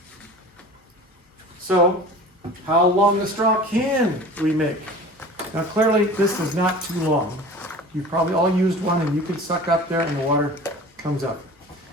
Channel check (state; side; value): normal; both; correlation 0.40